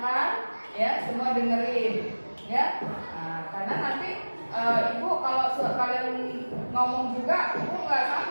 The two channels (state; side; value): inverted; both; correlation -1.00